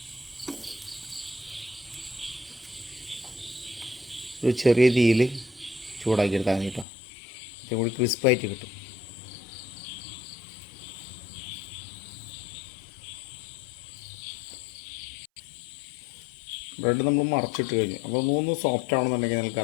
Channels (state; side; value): drops out; right; at 6.9 s